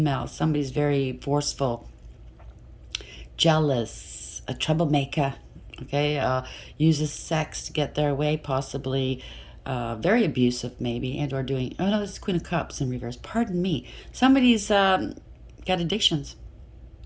Somebody's very forceful, jealous, a troublemaker. Okay, uses sex to get their way, possibly. Very abusive, maybe, and or doing. Oh no, this is Queen of Cups in reverse. Pardon me. Somebody's got addictions.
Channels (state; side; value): identical; both; correlation 1.00